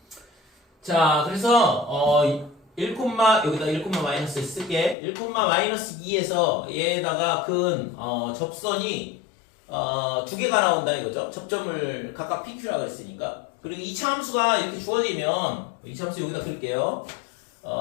자 그래서 1, 여기다 1, 쓸게. 1,-2에서 얘에다가 근 접선이 두 개가 나온다 이거죠. 접점을 각각 PQ라 그랬으니까. 그리고 2차 함수가 이렇게 주어지면 2차 함수 여기다 쓸게요.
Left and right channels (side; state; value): right; drops out; at 5.0 s